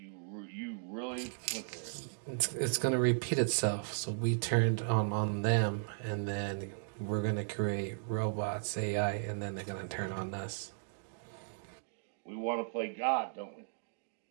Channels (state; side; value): silent; left; digital silence